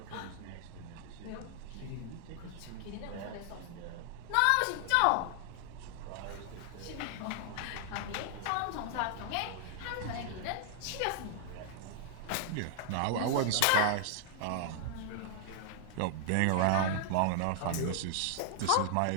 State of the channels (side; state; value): both; different; correlation 0.00